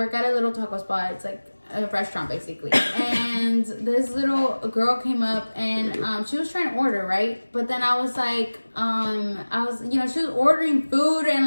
at a little taco spot. It's like a restaurant basically, and this little girl came up and she was trying to order, right? But then I was like, she was ordering food and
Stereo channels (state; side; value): inverted; both; correlation -1.00